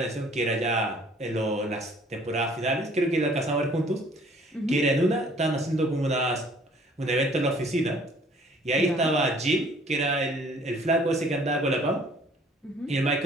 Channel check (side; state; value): both; normal; correlation 0.56